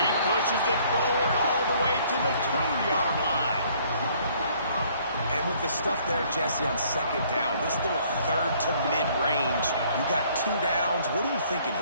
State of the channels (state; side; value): inverted; both; correlation -0.61